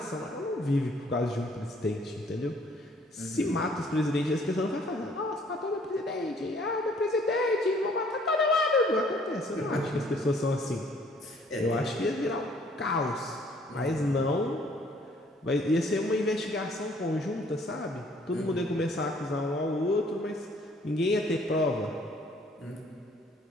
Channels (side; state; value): both; normal; correlation 0.60